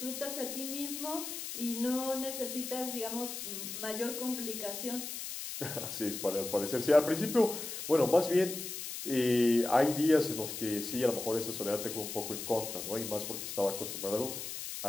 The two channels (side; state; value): left; noise; hiss, 7 dB below the sound